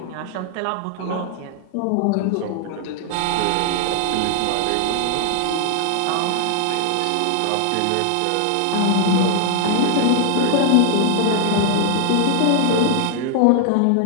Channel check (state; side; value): different; both; correlation 0.00